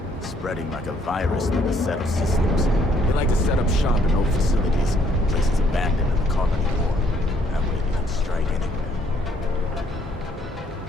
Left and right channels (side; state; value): both; normal; correlation 0.67